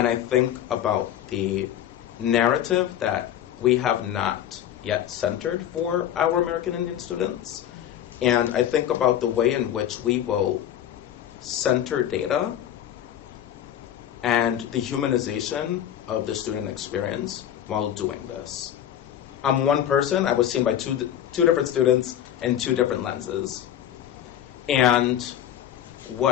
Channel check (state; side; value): quieter; right; 10.8 dB